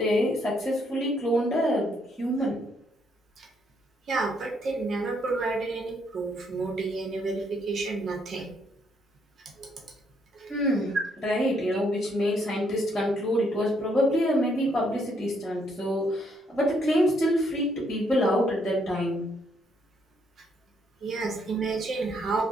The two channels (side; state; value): both; normal; correlation 0.72